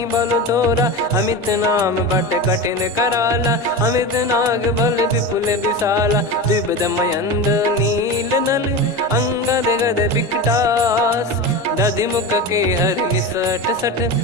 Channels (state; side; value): normal; both; correlation 0.24